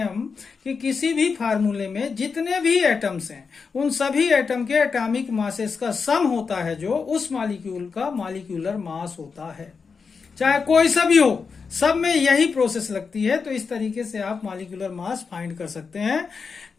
हम कि किसी भी फार्मूले में जितने भी एटम्स हैं उन सभी एटम के एटॉमिक मासेस का सम होता है जो उस मॉलिक्यूल का मॉलिक्यूलर मास होता है, चाहे कोई सा भी हो, सब में यही प्रोसेस लगती है। तो इस तरीके से आप मॉलिक्यूलर मास फाइंड कर सकते हैं,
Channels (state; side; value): quieter; right; 5.3 dB